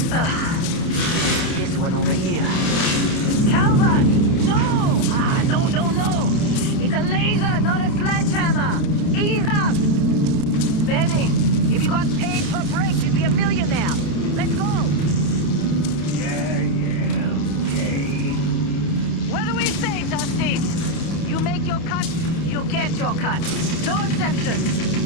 Huh. This one over here. Calvert! No! No! It's a laser, not a sledgehammer! Ease up! Benning, if you got paid per break, you'd be a millionaire. Let's go! Yeah, okay. What do we say, Dusty? You make your cut, you get your cut. No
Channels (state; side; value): late; right; 29 ms